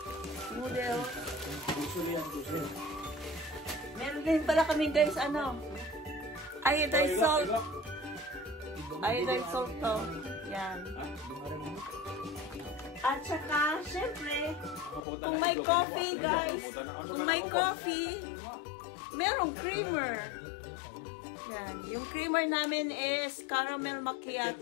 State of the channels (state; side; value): drops out; right; at 15.0 s